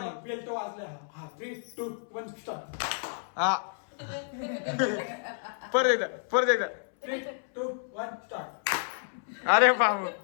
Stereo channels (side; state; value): right; silent; 58 dB below the other